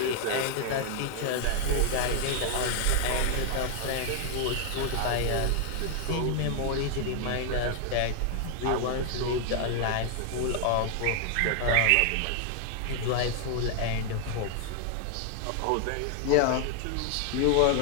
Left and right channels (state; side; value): different; both; correlation 0.00